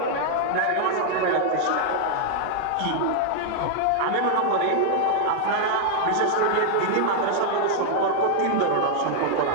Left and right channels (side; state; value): both; different; correlation 0.00